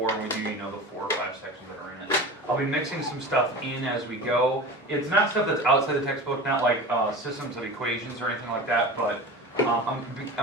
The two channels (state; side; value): normal; both; correlation 0.32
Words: and we do, the 4 or 5 sections that are in it. I'll be mixing some stuff in as we go. It's not stuff that's outside the textbook, not like systems of equations or anything like that, but I'm